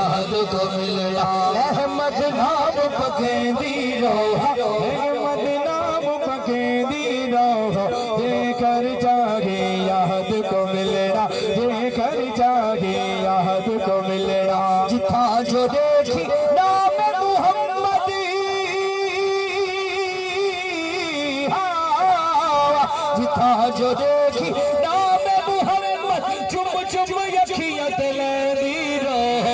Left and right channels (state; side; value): identical; both; correlation 1.00